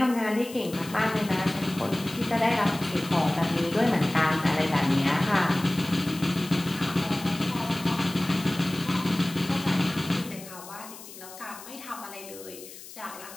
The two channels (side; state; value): left; noise; hiss, 16 dB below the sound